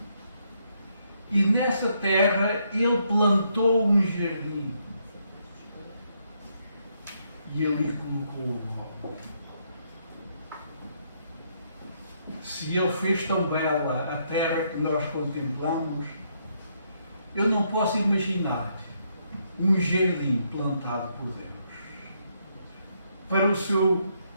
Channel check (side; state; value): both; inverted; correlation -0.75